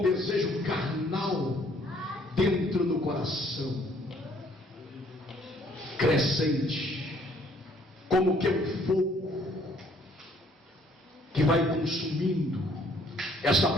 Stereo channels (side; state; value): both; normal; correlation 0.63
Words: desejo carnal dentro do coração, crescente, como que um fogo que vai consumindo essa